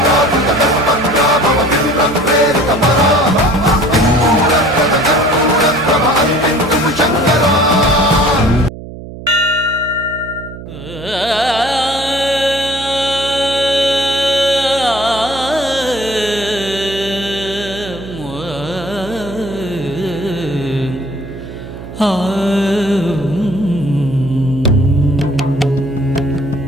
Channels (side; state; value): right; noise; hum, 13 dB below the sound